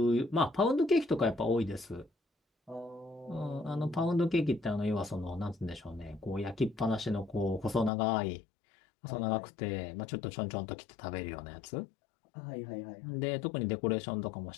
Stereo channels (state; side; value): drops out; right; at 7.9 s